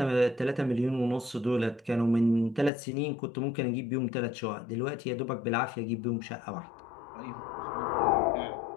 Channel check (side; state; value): right; drops out; at 2.7 s